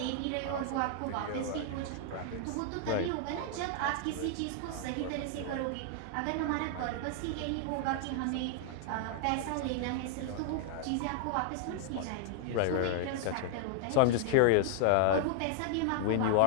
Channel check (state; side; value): different; both; correlation 0.00